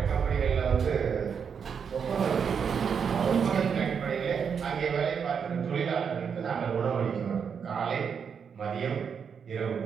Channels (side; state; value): left; quieter; 6.8 dB